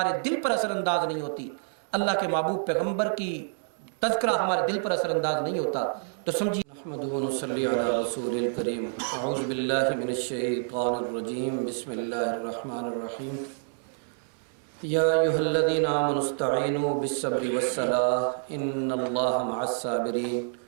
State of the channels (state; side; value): silent; left; digital silence